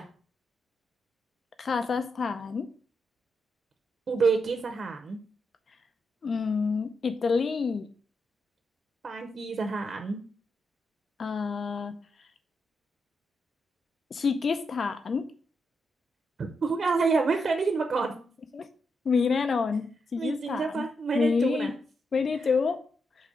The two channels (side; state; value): both; normal; correlation 0.83